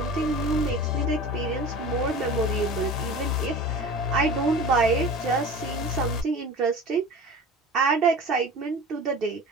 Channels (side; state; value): both; normal; correlation 0.37